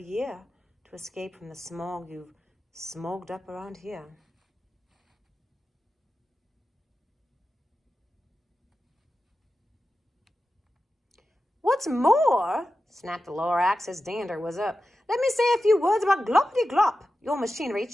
to escape from the smog you've smogged up around here. What's more, snapped the Lorax, his dander was up, let me say a few words about gloppity-glop. Your machinery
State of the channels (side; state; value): both; normal; correlation 0.92